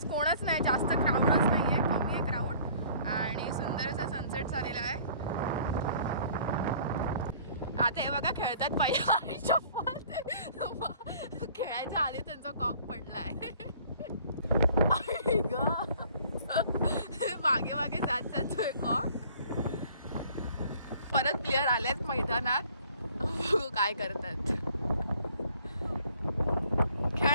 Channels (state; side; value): inverted; both; correlation -0.54